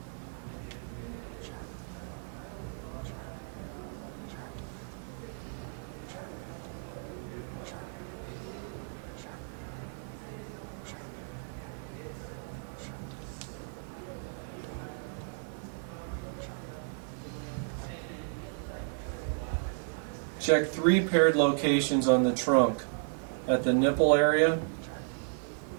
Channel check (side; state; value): left; silent; 55 dB below the other